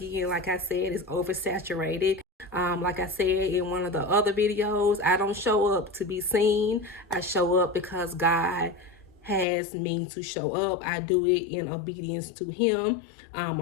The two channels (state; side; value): drops out; right; at 9.5 s